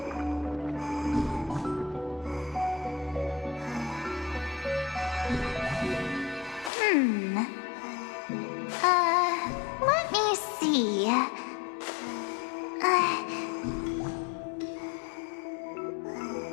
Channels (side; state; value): right; drops out; at 6.7 s